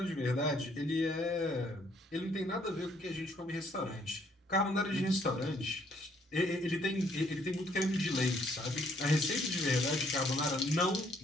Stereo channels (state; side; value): normal; both; correlation 0.66